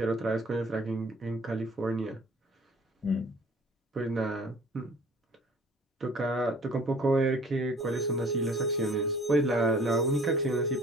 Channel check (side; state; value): both; normal; correlation 0.51